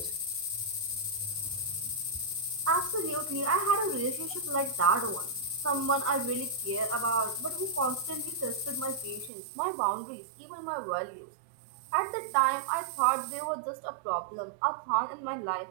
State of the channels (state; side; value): drops out; left; at 9.3 s